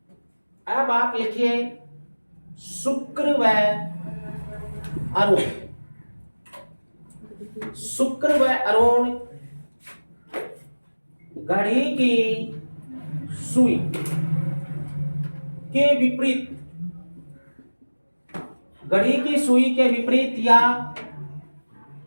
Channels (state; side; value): inverted; both; correlation -1.00